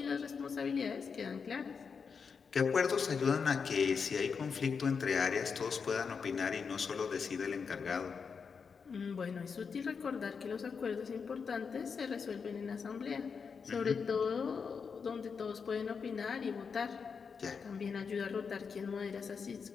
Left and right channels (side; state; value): right; quieter; 5.8 dB